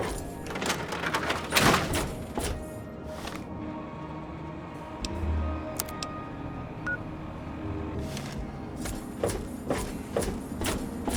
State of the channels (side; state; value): both; identical; correlation 1.00